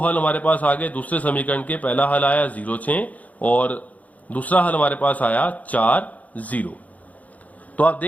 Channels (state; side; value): late; right; 0.073 ms